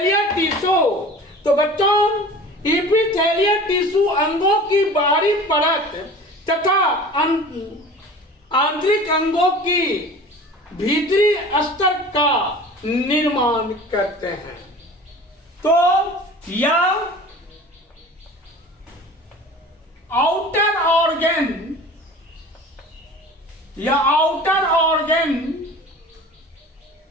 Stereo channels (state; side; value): normal; both; correlation 0.41